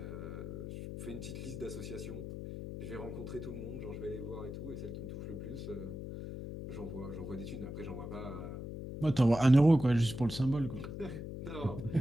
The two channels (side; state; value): left; noise; hum, 7 dB below the sound